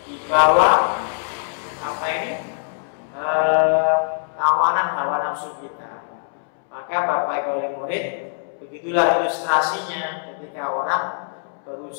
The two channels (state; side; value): silent; right; 64 dB below the other